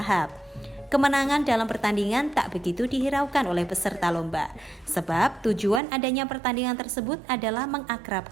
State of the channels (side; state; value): left; drops out; at 5.8 s